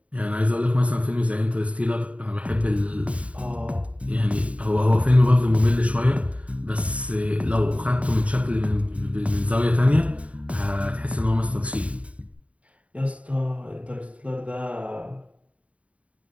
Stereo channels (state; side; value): late; left; 0.065 ms